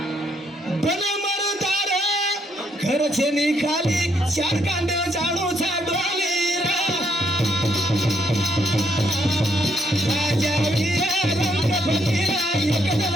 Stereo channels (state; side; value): normal; both; correlation 0.73